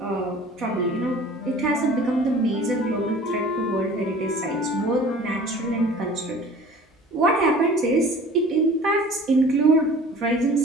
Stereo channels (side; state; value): both; normal; correlation 0.45